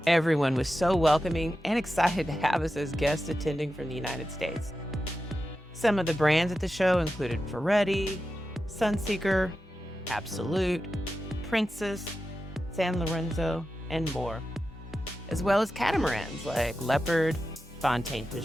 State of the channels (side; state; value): both; normal; correlation 0.91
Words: Everyone was so welcoming and excited to have us as guests attending from the United States. Some of the brands at the show included Ferretti, Sunseeker, Absolute, Princess, San Lorenzo, and more, as well as catamarans like Leopard, Fontaine